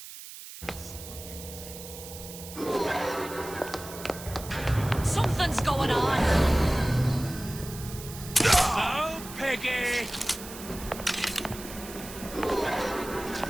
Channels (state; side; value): noise; right; hiss, 13 dB below the sound